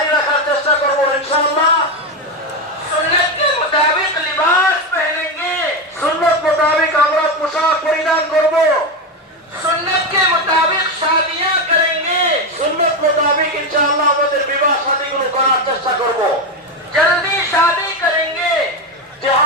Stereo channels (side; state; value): both; normal; correlation 0.12